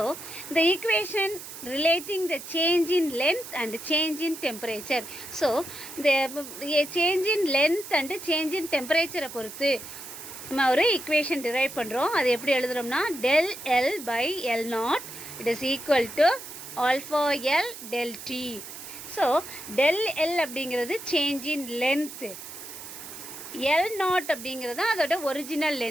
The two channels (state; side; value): noise; right; hiss, 12 dB below the sound